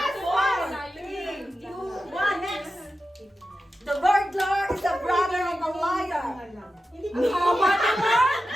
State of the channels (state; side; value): normal; both; correlation 0.92